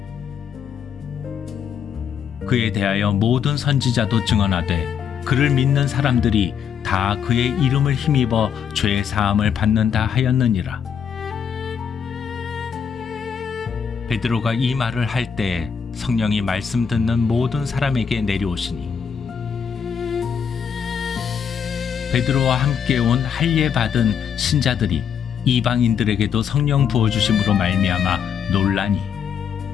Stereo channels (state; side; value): quieter; right; 7.5 dB